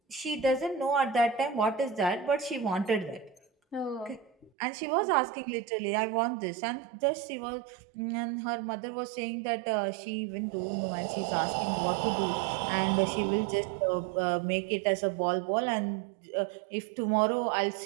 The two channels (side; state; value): left; drops out; at 4.5 s